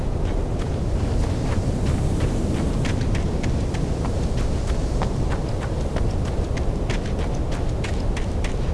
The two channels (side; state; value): both; identical; correlation 1.00